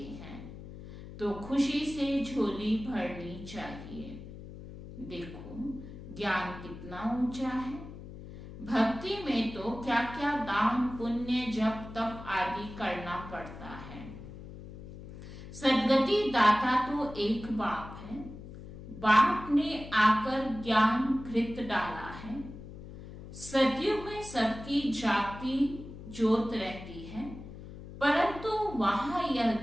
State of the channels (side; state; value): left; noise; hum, 13 dB below the sound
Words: हैं तो खुशी से झोली भरनी चाहिए। देखो ज्ञान कितना ऊंचा है। भक्ति में तो क्या क्या दान, पुण्य, जप, तप आदि करना पड़ता है। सदगति दाता तो एक बाप है। बाप ने आकर ज्ञान घृत डाला है। सदियों में सबकी जागती ज्योत रहती है, परंतु वहां यह